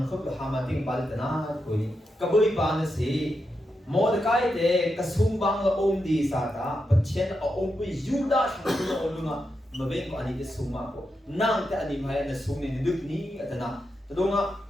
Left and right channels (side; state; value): both; normal; correlation 0.86